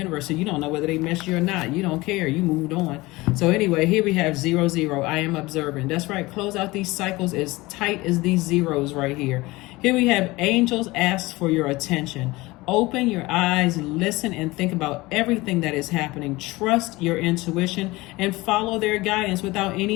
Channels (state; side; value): quieter; right; 21.0 dB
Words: so you don't know whether they miss you or not. You don't care. You moved on. So anyway, here we have 0-0. I am observing. That's right. Close out these cycles as tight as these zeros right here. Here we have angels ask for your attention. Open your eyes, listen, and think about everything that is happening. Trust your intuition and follow their guidance without